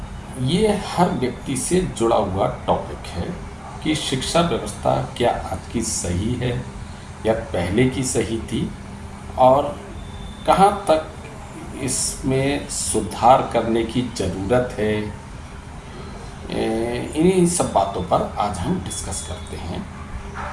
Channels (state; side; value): identical; both; correlation 1.00